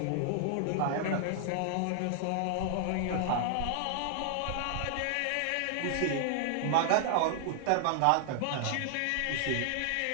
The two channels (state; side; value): different; both; correlation 0.00